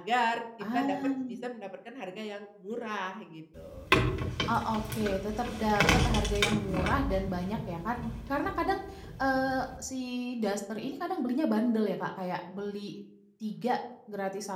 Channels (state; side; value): identical; both; correlation 1.00